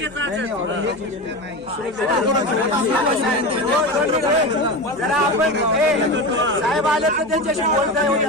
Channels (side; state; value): left; noise; hum, 25 dB below the sound